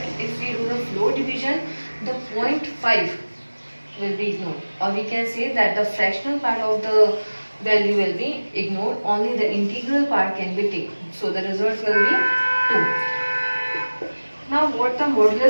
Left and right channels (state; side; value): inverted; both; correlation -1.00